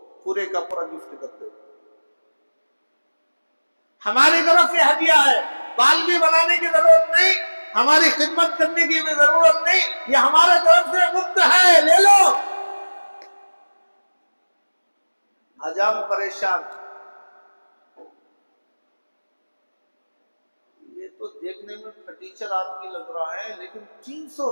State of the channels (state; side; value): inverted; both; correlation -1.00